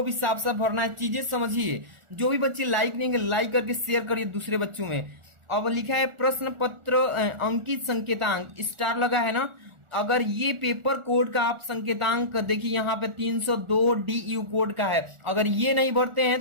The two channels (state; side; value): late; left; 1.4 ms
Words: भी साफ साफ भरना है, चीजें समझिए। जो भी बच्चे लाइक नहीं लाइक करके शेयर करिए दूसरे बच्चों में। अब लिखा है प्रश्न पत्र अंकित संकेतांक, स्टार लगा है ना, अगर ये पेपर कोड का आप संकेतांक देखिए यहाँ पे 302 DU कोड का है, अगर ये नहीं भरते हैं